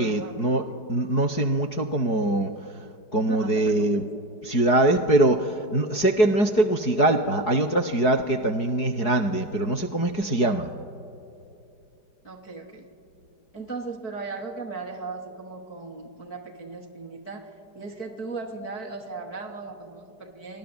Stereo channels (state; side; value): late; right; 4.7 ms